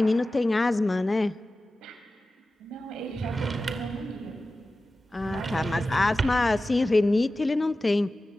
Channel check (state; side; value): normal; both; correlation 0.95